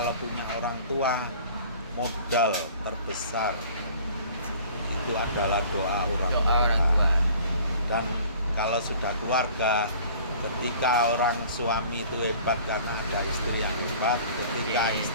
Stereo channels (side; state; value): both; inverted; correlation -0.49